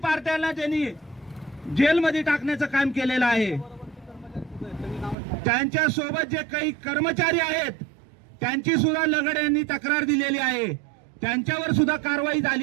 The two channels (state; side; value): drops out; left; at 5.2 s